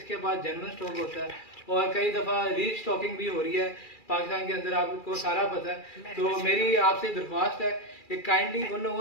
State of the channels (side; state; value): right; late; 2.3 ms